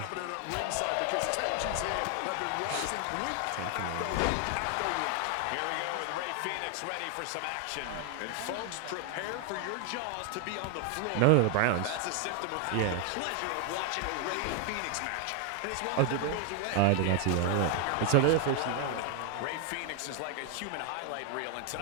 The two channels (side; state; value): both; different; correlation 0.00